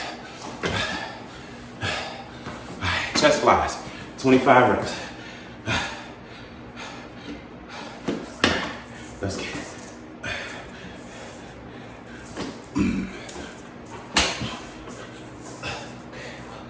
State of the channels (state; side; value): identical; both; correlation 1.00